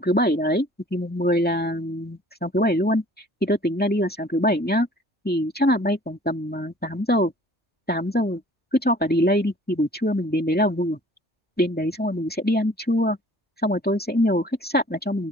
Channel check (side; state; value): both; normal; correlation 0.52